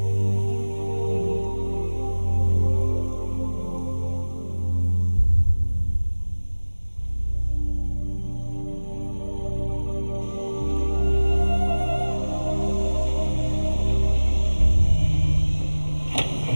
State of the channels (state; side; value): inverted; both; correlation -1.00